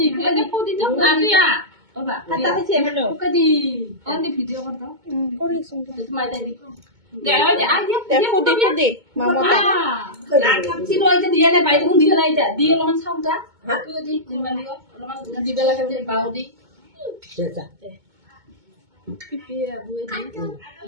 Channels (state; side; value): late; left; 2.2 ms